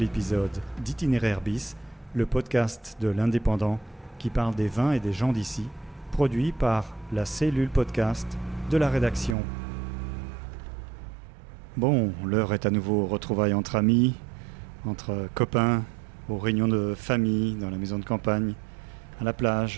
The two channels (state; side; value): drops out; left; at 9.3 s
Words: épisode d'Itinéraire Bis, le podcast de l'Indépendant qui parle des vins et des gens d'ici, produit par la cellule podcast de la rédaction. Bon, l'heure est à nouveau aux retrouvailles entre amis, entre copains, aux réunions de famille, dans la maison de campagne, à la